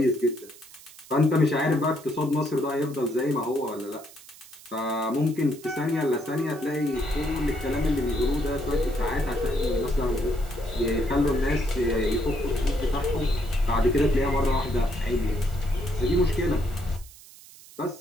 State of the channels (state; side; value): noise; right; hiss, 20 dB below the sound